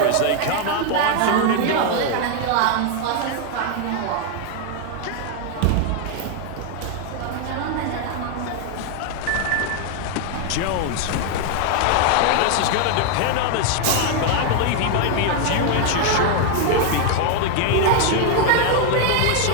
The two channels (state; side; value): different; both; correlation 0.01